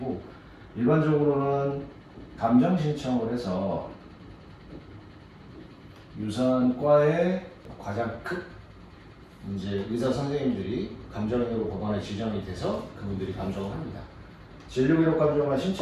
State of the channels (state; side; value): identical; both; correlation 1.00